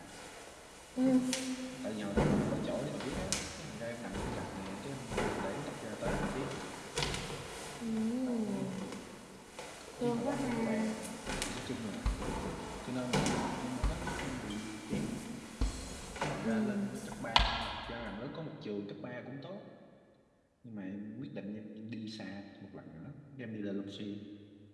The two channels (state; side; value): identical; both; correlation 1.00